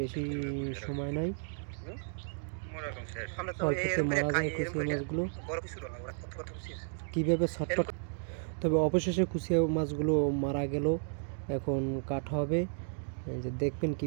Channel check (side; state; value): left; silent; digital silence